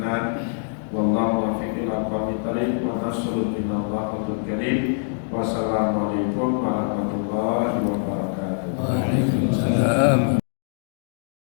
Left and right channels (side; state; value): right; silent; digital silence